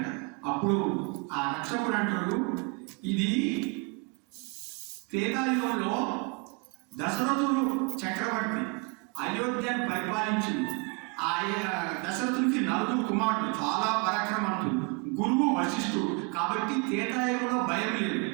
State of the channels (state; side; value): quieter; left; 31.3 dB